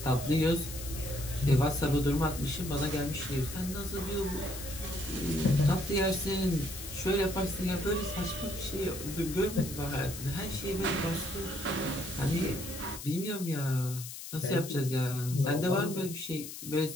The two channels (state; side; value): noise; left; hiss, 10 dB below the sound